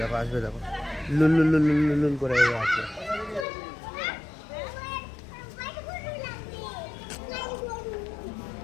দেখো আসবে, দেখো লুল লুল লুল লুল লুল করে আসবে।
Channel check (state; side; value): drops out; right; at 3.5 s